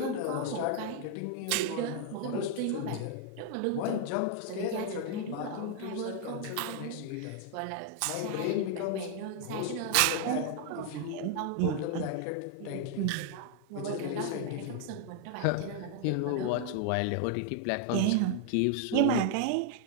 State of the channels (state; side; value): different; both; correlation 0.00